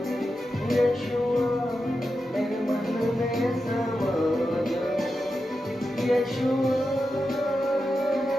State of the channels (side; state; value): both; normal; correlation 0.89